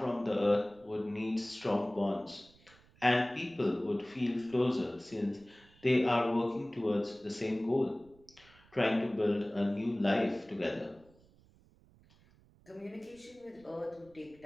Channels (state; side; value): noise; right; rumble, 28 dB below the sound